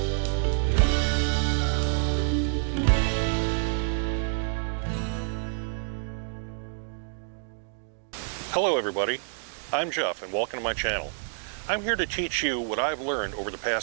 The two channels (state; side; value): silent; left; digital silence